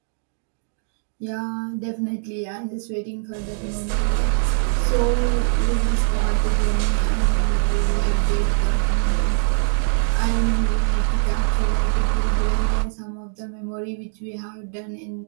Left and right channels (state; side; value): silent; left; digital silence